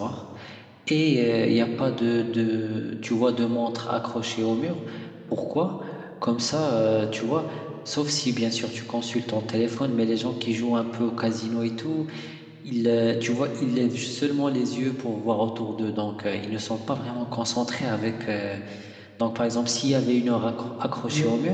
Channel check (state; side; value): identical; both; correlation 1.00